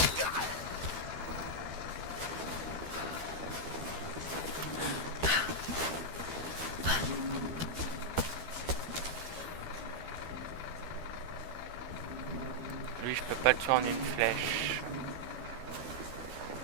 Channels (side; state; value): left; late; 12 ms